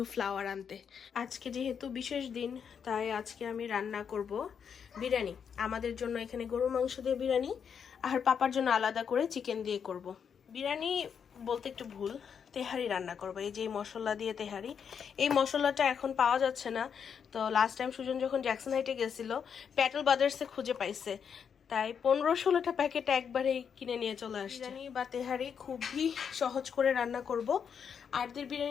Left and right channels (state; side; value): quieter; right; 7.2 dB